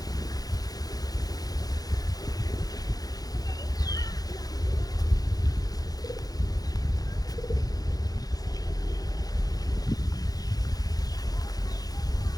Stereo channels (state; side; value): late; right; 0.18 ms